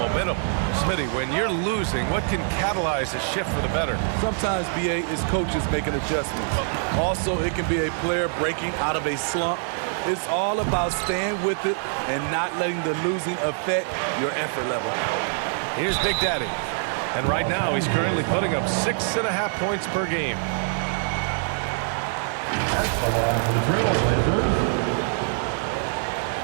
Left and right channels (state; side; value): silent; left; 62 dB below the other